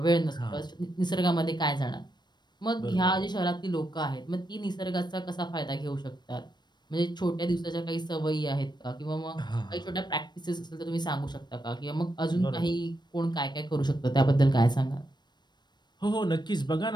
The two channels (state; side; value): late; right; 0.21 ms